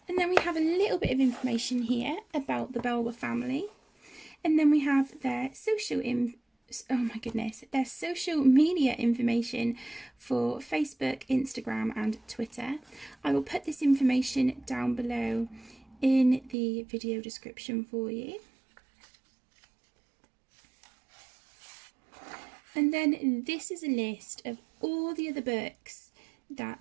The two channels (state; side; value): drops out; left; at 16.6 s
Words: and then we have a little bit of information here about the Belba family, and then we have their social their social media information for Facebook, Instagram and Twitter. I will put this information down below in the video description for you. And then this is a list of all the other books that